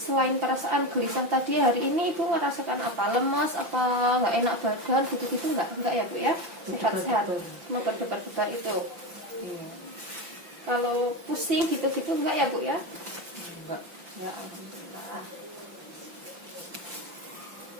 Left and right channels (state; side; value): late; left; 5.9 ms